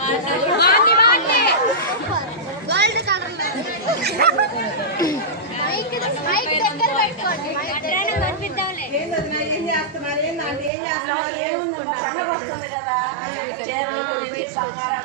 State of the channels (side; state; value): left; drops out; at 10.7 s